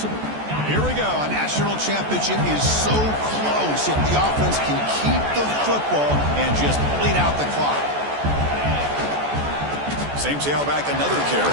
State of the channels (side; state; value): left; late; 14 ms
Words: Here we go. A national championship is so close if the offense can keep the football and just bleed out the clock. Same tailback, another